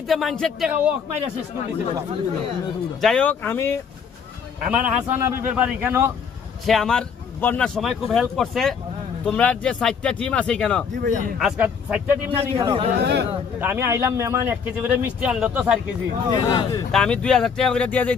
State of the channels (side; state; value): right; quieter; 6.4 dB